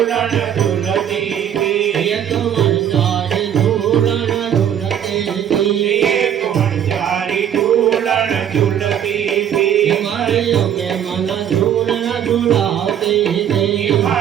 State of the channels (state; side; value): quieter; left; 9.6 dB